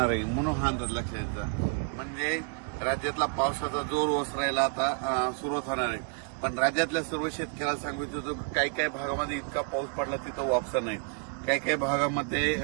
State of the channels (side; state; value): left; quieter; 35.5 dB